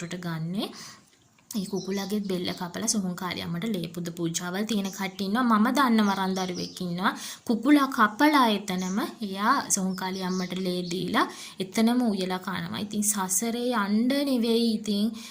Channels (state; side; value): identical; both; correlation 1.00